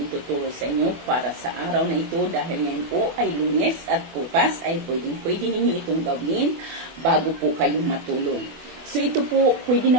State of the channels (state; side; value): late; left; 24 ms